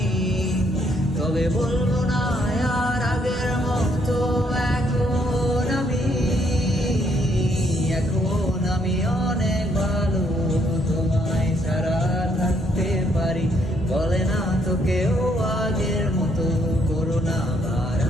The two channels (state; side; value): normal; both; correlation 0.70